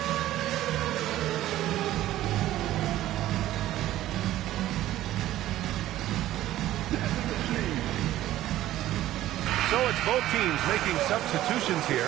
So it's both teams making substitutions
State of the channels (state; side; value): quieter; left; 14.2 dB